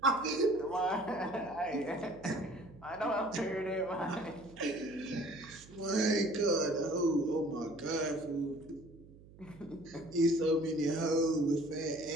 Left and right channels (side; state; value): right; noise; hum, 21 dB below the sound